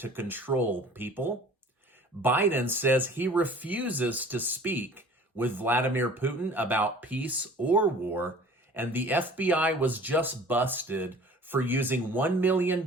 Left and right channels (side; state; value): both; normal; correlation 0.47